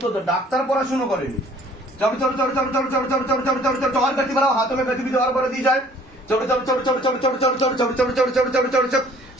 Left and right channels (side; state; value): both; normal; correlation 0.55